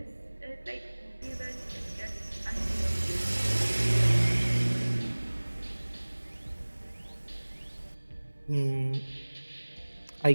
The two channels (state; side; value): inverted; both; correlation -1.00